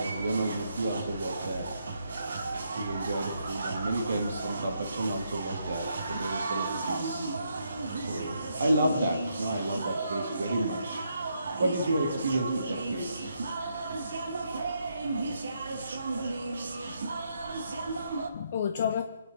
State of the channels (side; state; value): both; inverted; correlation -0.77